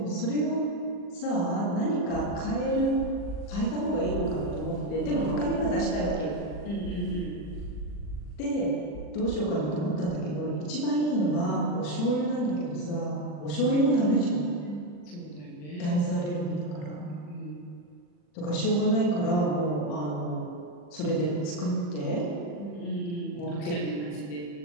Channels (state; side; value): late; right; 40 ms